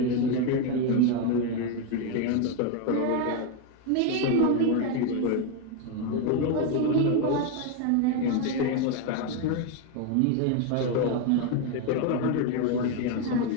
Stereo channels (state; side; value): different; both; correlation 0.02